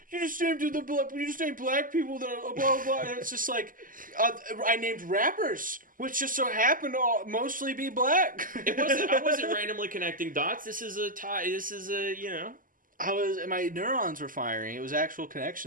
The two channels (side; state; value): left; late; 0.40 ms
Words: black people, that blah blah, and it's just like, I named rappers, which just so happen to mostly be black. I wasn't randomly connecting dots. This is a tie. My neurons were firing. It was actual